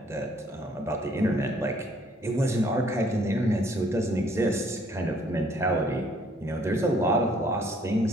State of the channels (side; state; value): both; normal; correlation 0.62